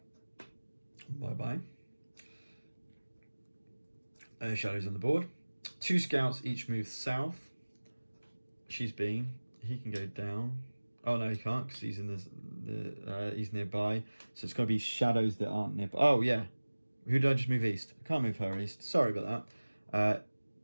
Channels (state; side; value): inverted; both; correlation -1.00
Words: Bye-bye. Shadows on the board. 2 scouts each move south. He can go down. Oh no, he can't because he's in he's nearby. So it's got to be shadows that aren't nearby. Oh yeah, who did I just move east? I can't move her east. Sorry about that.